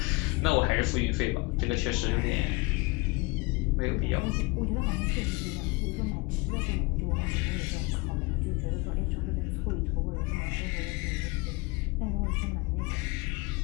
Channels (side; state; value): right; quieter; 25.5 dB